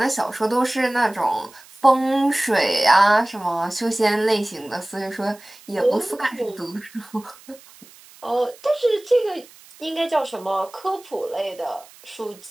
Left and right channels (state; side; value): noise; right; hiss, 23 dB below the sound